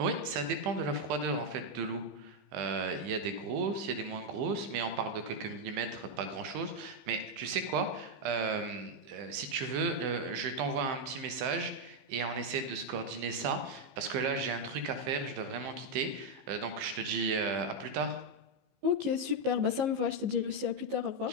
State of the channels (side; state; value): left; late; 15 ms